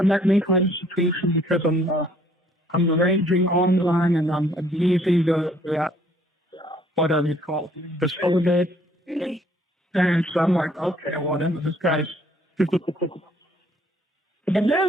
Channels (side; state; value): both; normal; correlation 0.62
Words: because I'm arranging online and I'm using the whatever you call it, the solidate. And so I'm like, okay, well then this guy's and